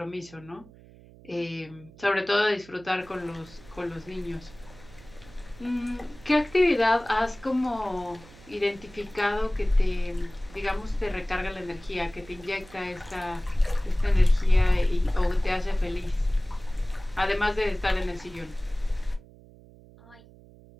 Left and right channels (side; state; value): right; noise; hum, 22 dB below the sound